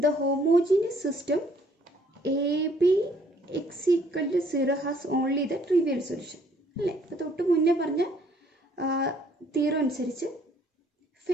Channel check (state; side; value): normal; both; correlation 0.62